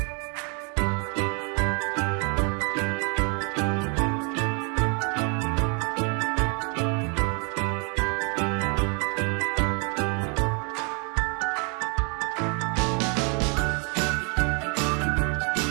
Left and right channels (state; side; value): quieter; left; 36.1 dB